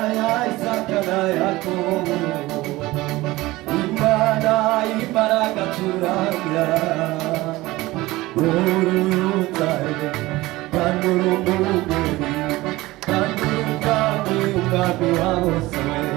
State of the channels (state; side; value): quieter; left; 19.1 dB